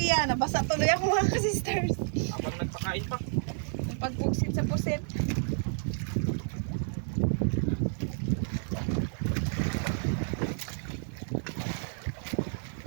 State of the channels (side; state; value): left; silent; digital silence